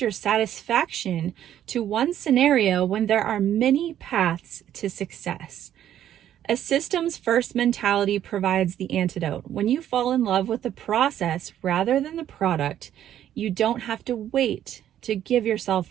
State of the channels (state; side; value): quieter; left; 11.1 dB